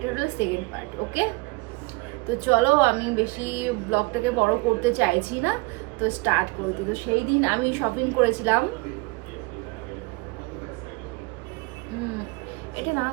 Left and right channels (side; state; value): left; quieter; 26.9 dB